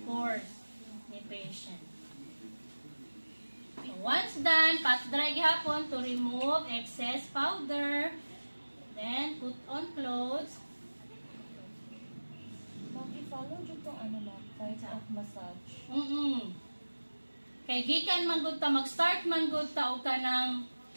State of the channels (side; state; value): both; inverted; correlation -1.00